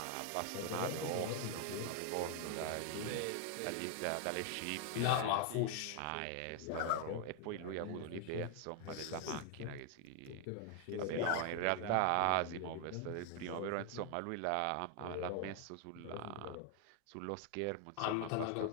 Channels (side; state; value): both; different; correlation 0.00